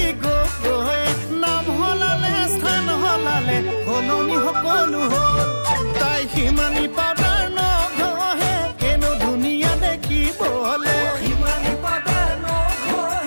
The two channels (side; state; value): both; inverted; correlation -1.00